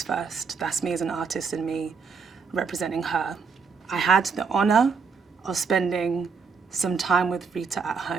first. That's me as an artist and me representing her. I had the honor of spending some time with Rita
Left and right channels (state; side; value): quieter; left; 5.4 dB